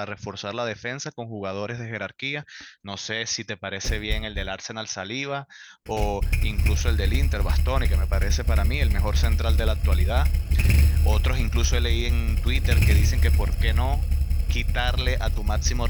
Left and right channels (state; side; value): identical; both; correlation 1.00